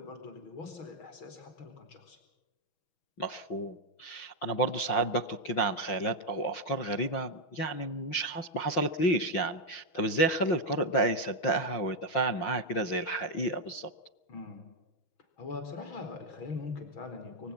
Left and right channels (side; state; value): right; late; 6.2 ms